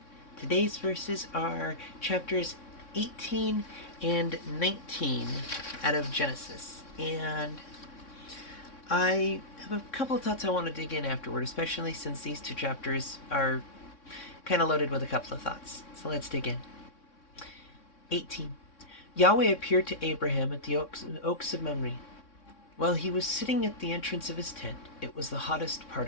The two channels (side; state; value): right; late; 3.6 ms